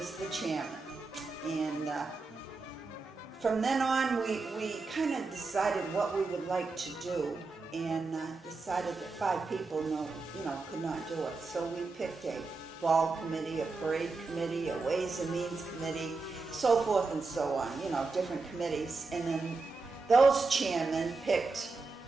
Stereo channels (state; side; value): quieter; left; 3.9 dB